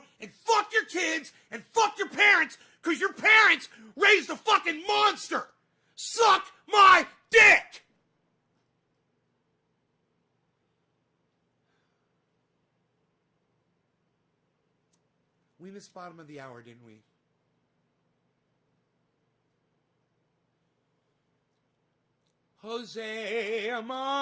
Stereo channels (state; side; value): identical; both; correlation 1.00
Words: and fuck your kids, and fuck your parents, because your parents raised a fucking monster! Suck my dick! We missed bottom of the hour, didn't we? Jose